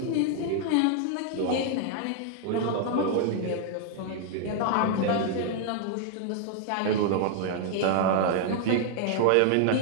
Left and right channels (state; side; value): different; both; correlation 0.00